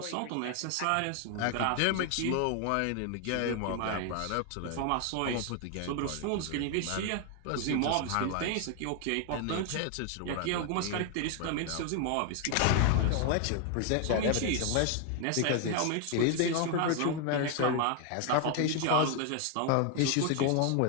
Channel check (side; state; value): both; different; correlation 0.00